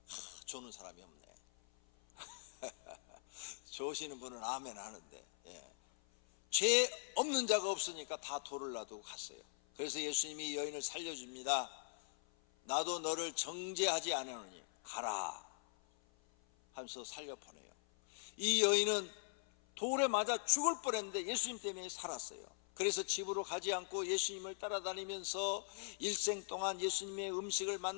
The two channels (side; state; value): right; silent; 50 dB below the other